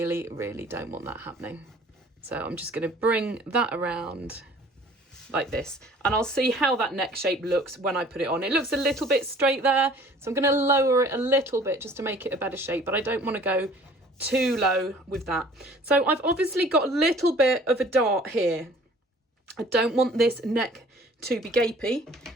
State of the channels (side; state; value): both; normal; correlation 0.51